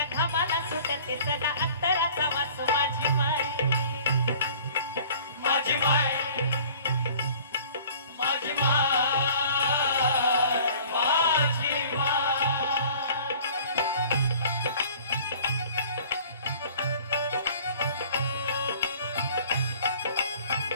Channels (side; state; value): both; inverted; correlation -0.49